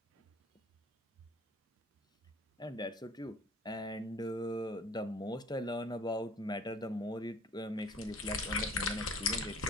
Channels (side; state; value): both; normal; correlation 0.49